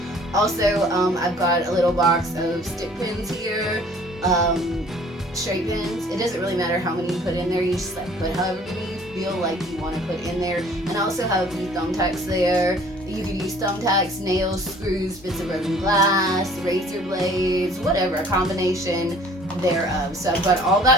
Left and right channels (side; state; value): both; normal; correlation 0.53